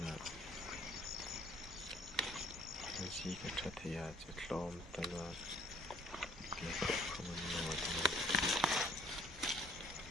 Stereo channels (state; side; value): normal; both; correlation 0.59